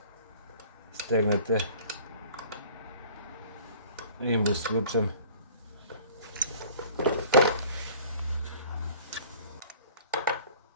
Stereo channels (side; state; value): both; inverted; correlation -0.49